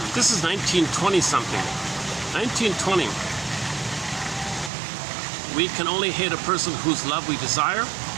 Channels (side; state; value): left; drops out; at 4.7 s